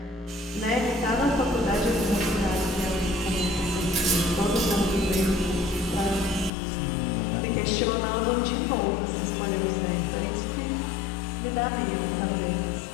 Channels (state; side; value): drops out; right; at 6.5 s